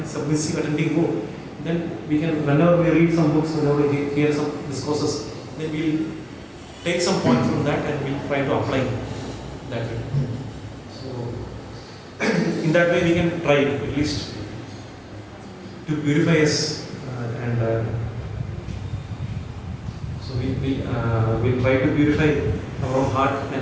submissive attending mood, then we can, whenever we read some books, whenever we hear some discourses, then we'll take some point from that and we'll try to apply that way. So in that way we can try at least to purify us and so we'll try to purify our own heart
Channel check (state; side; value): identical; both; correlation 1.00